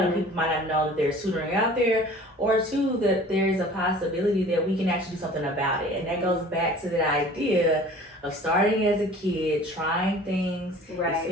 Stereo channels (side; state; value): both; normal; correlation 0.46